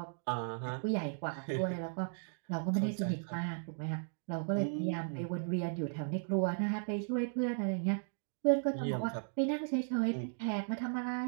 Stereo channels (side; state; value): left; silent; digital silence